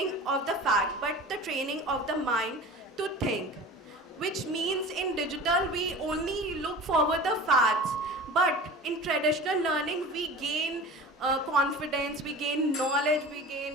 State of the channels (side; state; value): both; normal; correlation 0.37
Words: of the fact, but the training of the mind to think. Which means in digital, we only look forward the facts, but in traditional learning, we gain confidence, we gain knowledge, we